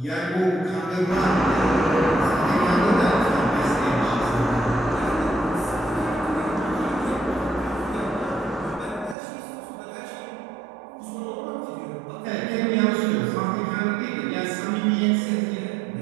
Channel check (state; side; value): drops out; left; at 9.2 s